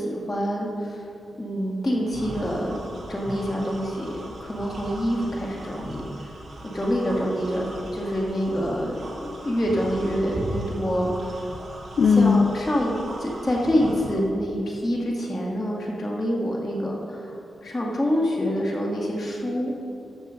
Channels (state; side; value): normal; both; correlation 0.89